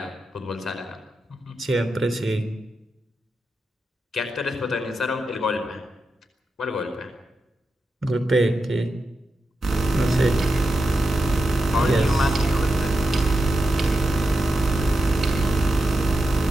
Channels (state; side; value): normal; both; correlation 0.88